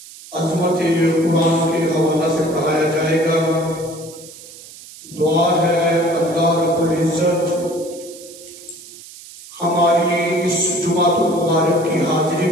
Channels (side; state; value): right; noise; hiss, 18 dB below the sound